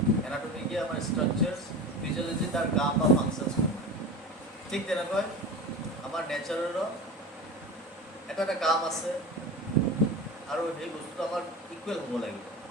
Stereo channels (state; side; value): normal; both; correlation 0.30